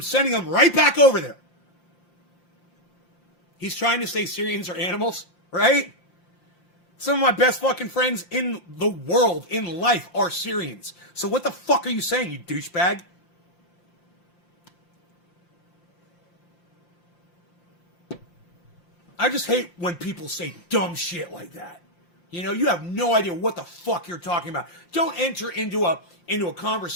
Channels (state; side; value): late; right; 5.7 ms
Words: sending them right back over there. He's trying to say Syrians are animals, right? Some of my best fucking friends in the world, in life, are Syrians. So what the fuck are you saying, you douchebag? I just hate when people say dumb shit like that. You know, you have no idea what the fuck you're talking about. Don't enter into a